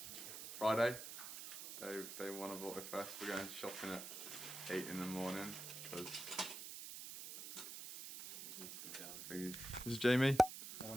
Friday, day one of AutoFest. We're going shopping at 8 in the morning because this is Jamie.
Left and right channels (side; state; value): right; noise; hiss, 9 dB below the sound